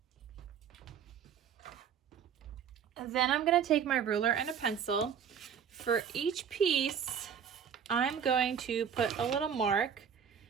And then I'm going to take my ruler and a pencil. For each piece, I'm going to put a little mark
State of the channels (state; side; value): quieter; left; 7.8 dB